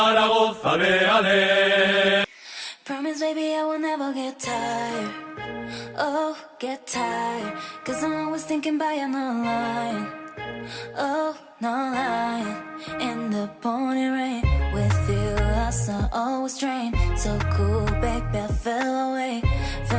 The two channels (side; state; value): both; identical; correlation 1.00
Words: ale, ale. Promise, baby, I will never get tired. Oh, get tired. Cause I'm always thinking about you, no lying. Oh, no lying. In the pouring rain, with you I saw always drain. So cool, baby, I fell away